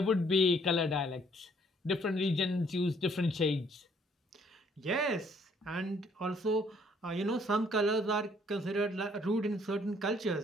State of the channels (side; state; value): both; normal; correlation 0.64